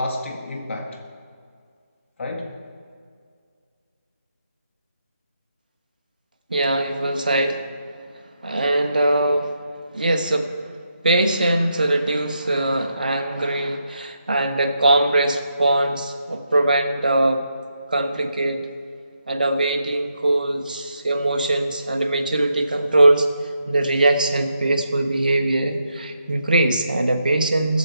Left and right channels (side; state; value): both; inverted; correlation -0.81